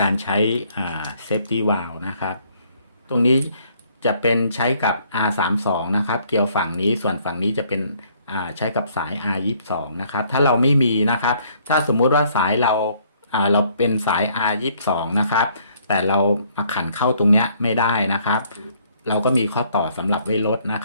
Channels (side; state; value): both; inverted; correlation -0.64